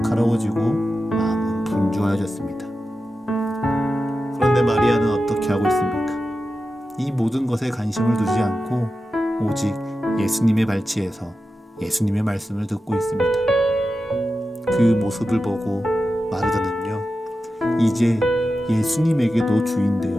마음은 분주해졌습니다. 그런데 마리아는 어떻게 하고 있습니까? 이 모든 것에 관심을 두지 않고 오직 예수님의 발치에서 예수님의 말씀을 듣고 있습니다. 그 모습을 보고 마르다는요, 이제 예수님에게도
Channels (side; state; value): both; normal; correlation 0.92